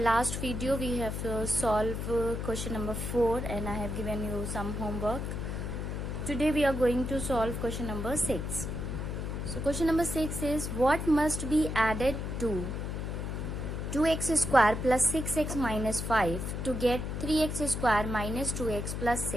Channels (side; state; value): left; noise; hum, 4 dB below the sound